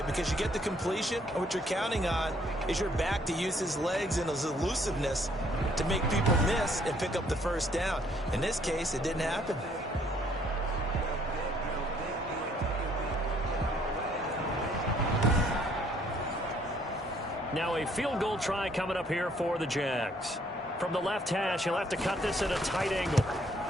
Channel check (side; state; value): both; normal; correlation 0.65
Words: because you get the completion, and what you're counting on is your back to use his legs and his elusiveness to make people miss and pick up the first down. In this case, it didn't happen. Now a field goal try coming up here for the Jags. From the left hash, he'll have to cut this at a tight angle.